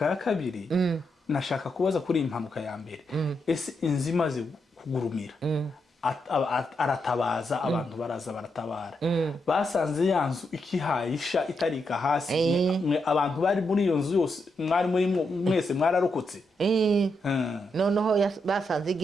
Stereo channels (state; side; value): normal; both; correlation 0.82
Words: ya kabiri, nashaka kubaza kuri impanuka ya mbere. Ese inzimaze kugurumira aratabaza, abantu baraza baratabara, basanze yanzu ikihayisha itarika hasi, abantu bari muri iyo nzu yose mwari muri mwese mwararokotse. Noneho basanze